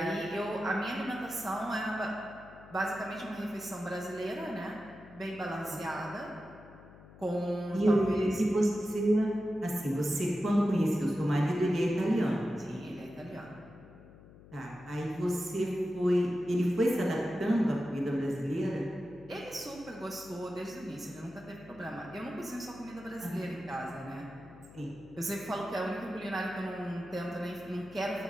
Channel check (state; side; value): noise; left; hum, 20 dB below the sound